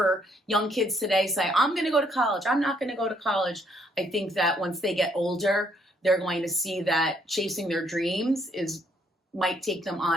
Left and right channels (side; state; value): both; normal; correlation 0.69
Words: young kids today say, I'm going to go to college, I'm not going to go to college. I think that once they get older, they're going to see that chasing their dreams might take them